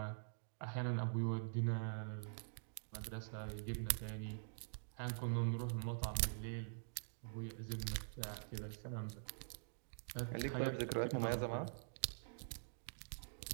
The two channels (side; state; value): left; silent; digital silence